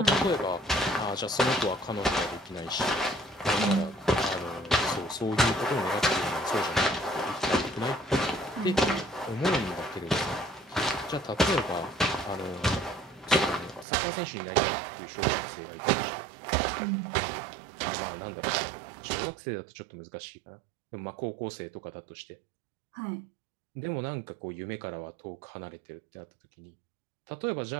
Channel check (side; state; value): left; drops out; at 13.9 s